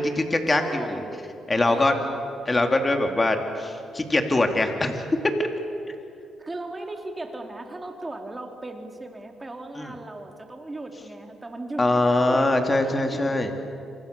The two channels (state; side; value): normal; both; correlation 0.91